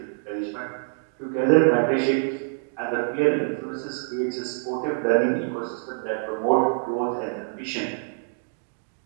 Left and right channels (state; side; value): silent; left; digital silence